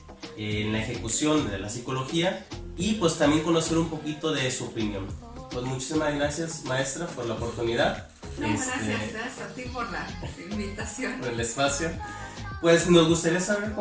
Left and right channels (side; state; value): both; identical; correlation 1.00